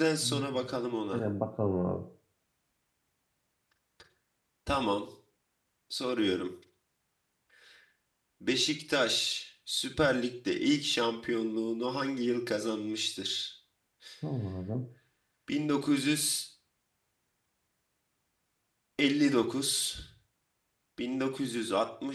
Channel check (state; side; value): identical; both; correlation 1.00